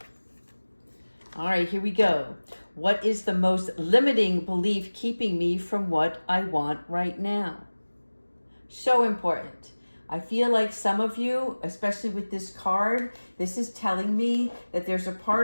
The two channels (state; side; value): inverted; both; correlation -1.00